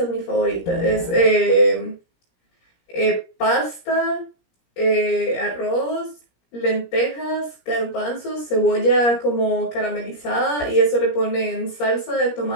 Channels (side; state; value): right; late; 17 ms